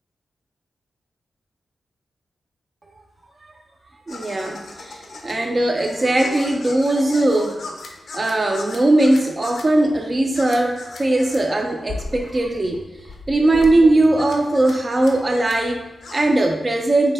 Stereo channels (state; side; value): normal; both; correlation 0.94